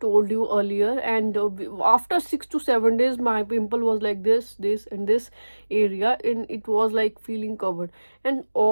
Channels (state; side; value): inverted; both; correlation -1.00